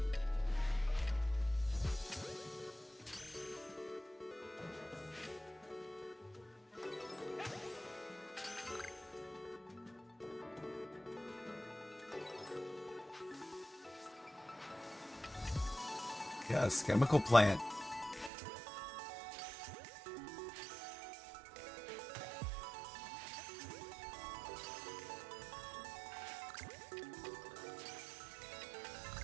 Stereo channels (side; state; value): left; drops out; at 18.3 s